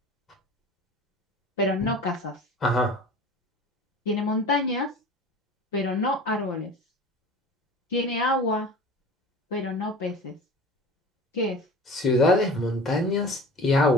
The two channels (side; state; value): both; normal; correlation 0.39